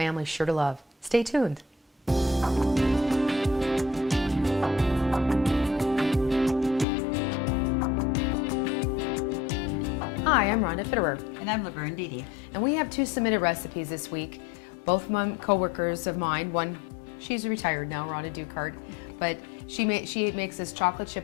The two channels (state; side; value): drops out; right; at 6.9 s